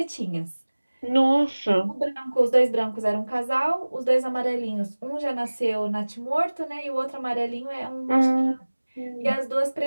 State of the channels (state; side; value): inverted; both; correlation -1.00